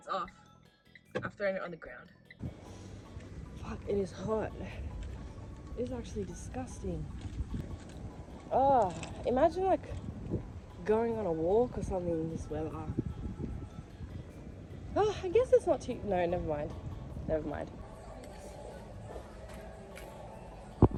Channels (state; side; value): identical; both; correlation 1.00